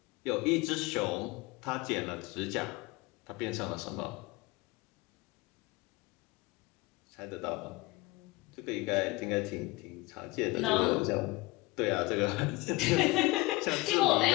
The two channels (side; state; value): right; quieter; 22.6 dB